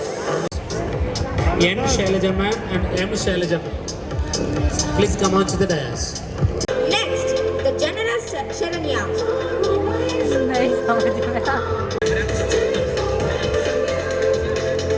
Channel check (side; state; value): both; identical; correlation 1.00